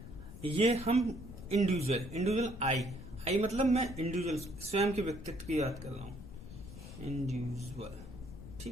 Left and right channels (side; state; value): left; noise; rumble, 13 dB below the sound